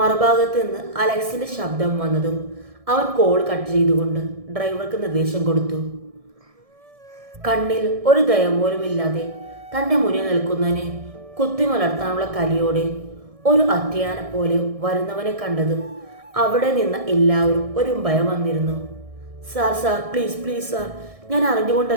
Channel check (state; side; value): late; left; 1.6 ms